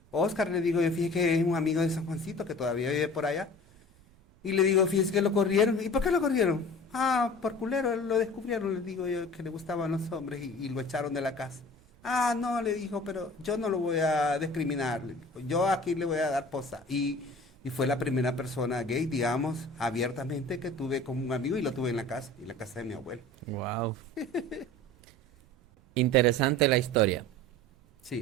Oscar, le digo, yo fíjese que es un amigo de San Juancito que todavía vive por allá. Y le digo, fíjese que lo corrieron. ¿Y por qué lo corrieron? Ah, por culero, lo descubrieron, le digo yo, que le gustaban los hombres y lo echaron de la casa. Ah, no, le dijo, pero yo no lo voy a discriminar, le dijo, yo aquí le voy a dar posa. Y fue la primera persona gay, digamos, abiertamente que tuve como un amigo y lo tuve en la casa de mi abuelo. Wow. Interesante la historia.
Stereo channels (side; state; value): right; noise; rumble, 28 dB below the sound